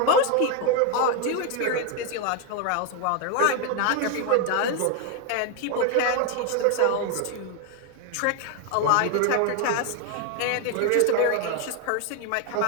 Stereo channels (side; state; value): both; different; correlation 0.01